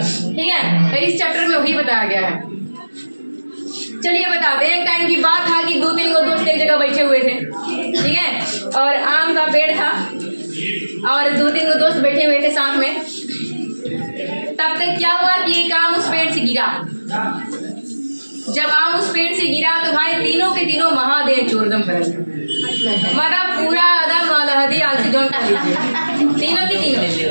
ठीक है, तो इस चैप्टर में वही बताया गया है। चलिए बताते हैं। एक टाइम की बात था कि 2-3 दोस्त एक जगह बैठे हुए थे। ठीक है, और आम का पेड़ था और 2-3 दोस्त बैठे हुए थे साथ में। तब तक क्या हुआ कि एक आम उस पेड़ से गिरा। जब आम उस पेड़ से गिरा तो भाई तीनों के तीनों महादेव चोरदम फैल गए। मतलब पूरा आदम अलहदी आलसी जोन खा लीजिए, तीनों की तीनों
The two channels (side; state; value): both; inverted; correlation -1.00